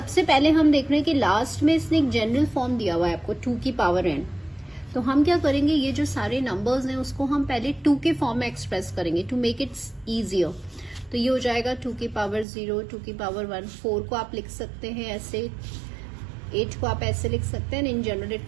पहले हम देख रहे हैं कि लास्ट में इसने एक जनरल फॉर्म दिया हुआ है आपको 2 की पावर n। तो हम क्या करेंगे, ये जो सारे नंबर्स हैं उसको हम पहले 2 के फॉर्म में एक्सप्रेस करेंगे टू मेक इट इजियर। तो ये हो जाएगा 2 की पावर 0, 2 की पावर 1, 4 को आप लिख सकते हैं ऐसे, 8 को आप ऐसे लिख सकते हैं। In general it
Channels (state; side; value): drops out; left; at 12.5 s